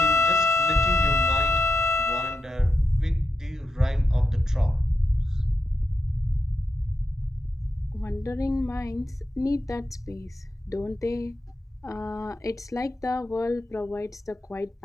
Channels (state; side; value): normal; both; correlation 0.87